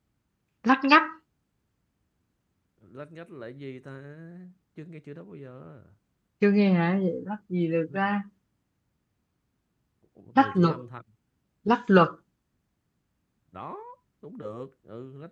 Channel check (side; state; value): both; identical; correlation 1.00